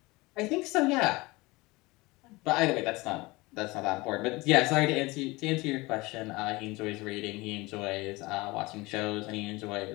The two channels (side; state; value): right; quieter; 22.7 dB